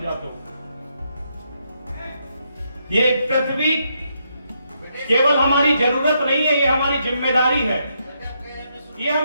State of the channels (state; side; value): inverted; both; correlation -0.79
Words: तो। ये पृथ्वी केवल हमारी जरूरत नहीं है, ये हमारी जिम्मेदारी है। ये